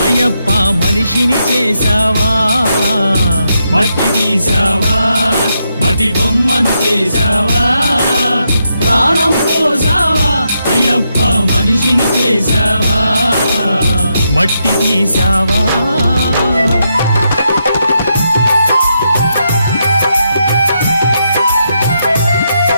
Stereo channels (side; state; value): both; inverted; correlation -0.82